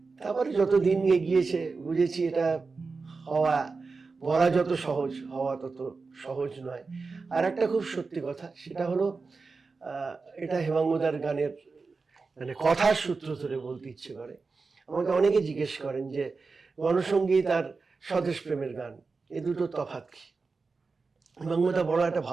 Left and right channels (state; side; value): quieter; left; 4.3 dB